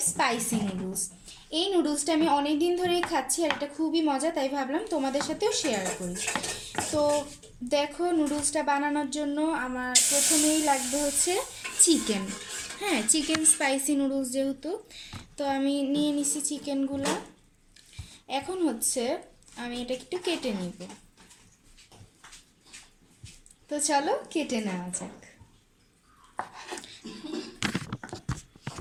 স্পাইসি নুডলস। এই নুডলসটা আমি অনেক দিন ধরেই খাচ্ছি আর এটা খুবই মজা, তাই ভাবলাম তোমাদের সাথেও শেয়ার করি। তো দেখো, নুডলসটা বানানোর জন্য আমার প্রথমেই লাগবে হচ্ছে চিকেন। হ্যাঁ, চিকেন স্পাইসি নুডলস যেহেতু, তো আমি নিয়ে নিছি চিকেনগুলো। এখন হচ্ছে আমি এটা একটু কেটে নিব। তো চলো কেটে নেওয়া যাক।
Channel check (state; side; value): identical; both; correlation 1.00